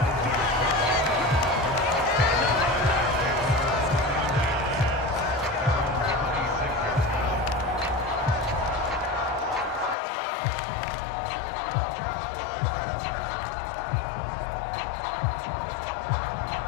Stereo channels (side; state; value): right; drops out; at 10.0 s